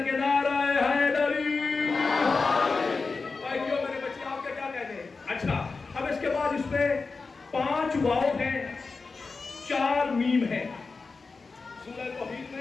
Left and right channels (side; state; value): right; quieter; 4.3 dB